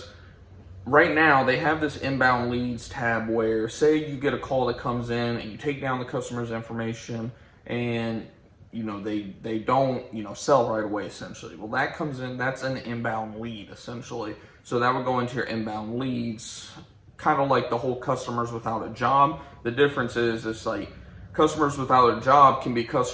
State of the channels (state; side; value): identical; both; correlation 1.00